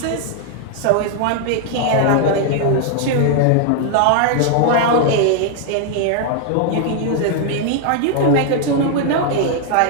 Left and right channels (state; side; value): different; both; correlation 0.00